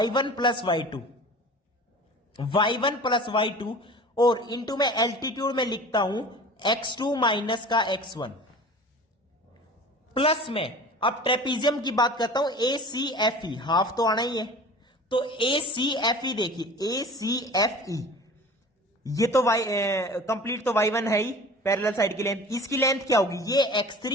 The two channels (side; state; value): both; normal; correlation 0.41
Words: plus y2, y1 plus y2, और इंटू में एल्टीट्यूड में लिखता हूं x2 माइनस का x1 प्लस में, अब ट्रेपीजियम की बात करता हूं ए सी एफ ई, हाफ तो आना ही है, तो ए सी एफ ई देखिए, ए सी एफ ई ये तो y कंप्लीट तो y1 है ही, पैरेलल साइड की लेंथ। इसकी लेंथ क्या होगी, ये